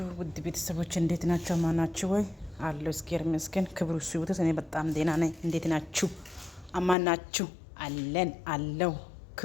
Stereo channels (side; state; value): right; drops out; at 7.0 s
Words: ውድ ቤተሰቦች እንዴት ናችሁ? ማናችሁ ወይ አለው እስኪር መስከን ክብሩ ሲውተስ እኔ በጣም ደህና ነኝ። እንዴት ናችሁ? አማናችሁ አለን አለው